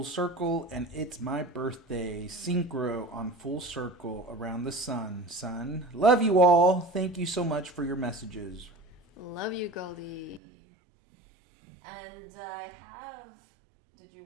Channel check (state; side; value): drops out; left; at 10.4 s